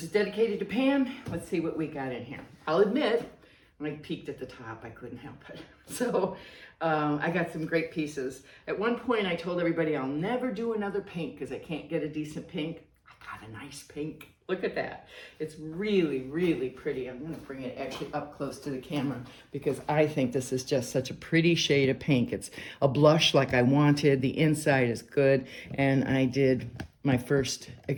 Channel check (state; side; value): identical; both; correlation 1.00